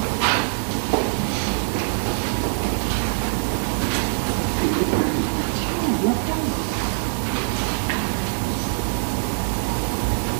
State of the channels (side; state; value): left; silent; digital silence